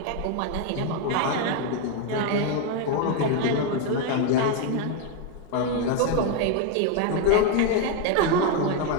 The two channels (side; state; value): both; different; correlation 0.01